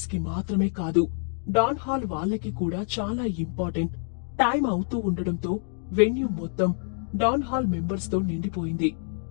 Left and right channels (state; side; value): silent; right; 59 dB below the other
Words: కి మాత్రమే కాదు, డాన్ హాల్ వాళ్ళకి కూడా చాలా ఇంపార్టెంట్. టైం అవుతూ ఉండడంతో వెన్యూ మొత్తం డాన్ హాల్ మెంబర్స్ తో నిండిపోయింది.